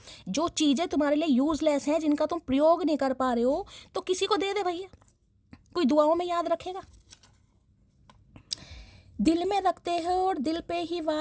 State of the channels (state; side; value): identical; both; correlation 1.00